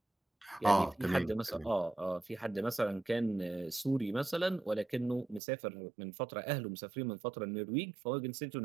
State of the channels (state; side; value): drops out; left; at 5.4 s